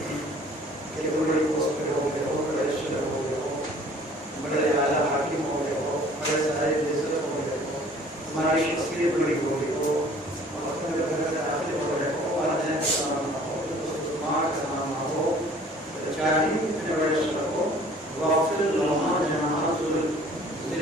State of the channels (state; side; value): normal; both; correlation 0.52